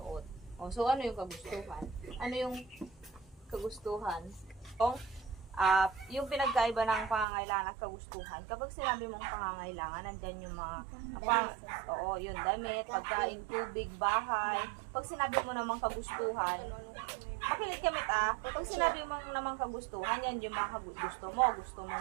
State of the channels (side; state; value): left; drops out; at 7.2 s